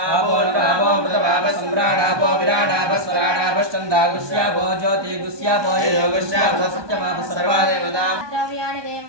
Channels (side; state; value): left; late; 1.2 ms